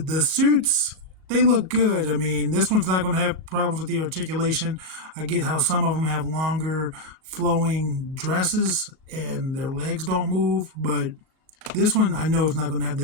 they look good. I mean, this one's not going to have problems with the articulation. I get how some of them have longer flowing dresses and their legs don't move, but this one I know is not going to have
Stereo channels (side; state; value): left; late; 37 ms